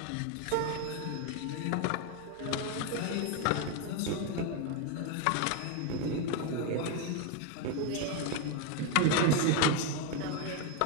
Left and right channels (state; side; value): different; both; correlation 0.02